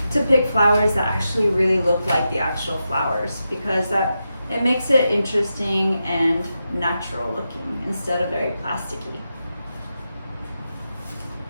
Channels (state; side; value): inverted; both; correlation -0.88